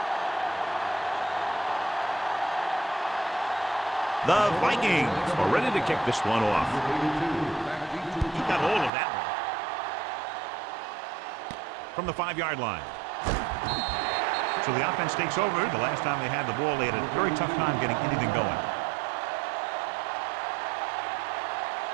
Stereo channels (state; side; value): drops out; left; at 8.9 s